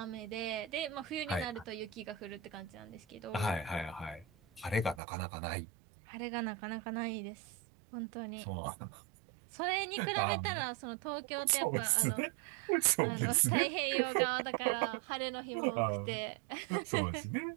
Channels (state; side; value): drops out; left; at 5.0 s